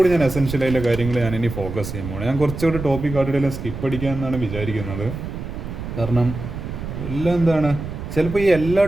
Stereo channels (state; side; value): noise; right; rumble, 8 dB below the sound